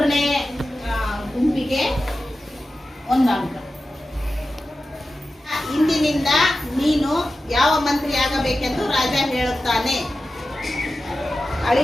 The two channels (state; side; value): normal; both; correlation 0.93